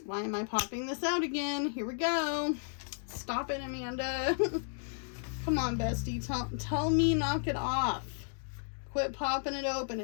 Why am I popping this out again? Here we go. Stop it, Amanda. Come on, bestie. Tell me knock it off. Quit popping it open.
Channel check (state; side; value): silent; right; digital silence